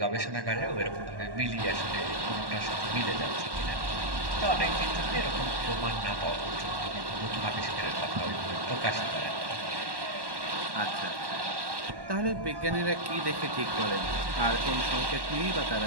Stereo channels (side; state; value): left; late; 1.1 ms